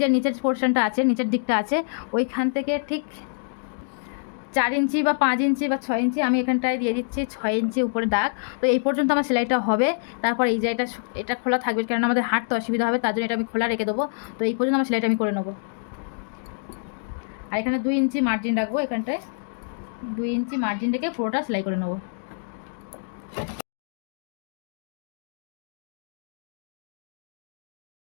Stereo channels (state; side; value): silent; right; digital silence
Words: নিচের পোর্শনটা আছে, নিচের দিকটা আছে, ওইখান থেকে ঠিক 4 ইঞ্চি বা 5 ইঞ্চি বা 6 ইঞ্চি আমি এখানটায় দিয়ে দিচ্ছি 6 ইঞ্চি উপরে দাগ। তো এই পর্যন্ত আমার সেলাইটা হবে। তারপর এই জায়গাটা এটা খোলা থাকবে, কারণ আমাদের হাঁটতে অসুবিধা হবে, তার জন্য এটা আমি খোলা রেখে দেবো। তো এই পর্যন্ত আমার সেলাইটা আমি করে নেবো। আর এখানে 2 ইঞ্চি মার্জিন রাখবো, এখানটায় 2 ইঞ্চি মার্জিন রেখে পুরোটা সেলাই করে নেবো।